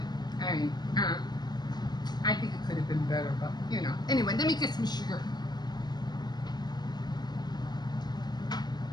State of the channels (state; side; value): late; right; 0.20 ms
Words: I mean, I think it could have been better, but Anyway, let me get some sugar.